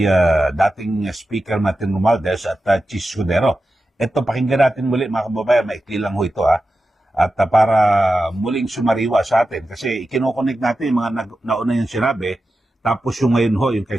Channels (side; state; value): both; normal; correlation 0.92